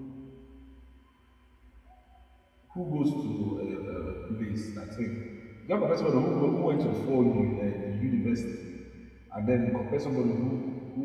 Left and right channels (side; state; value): both; identical; correlation 1.00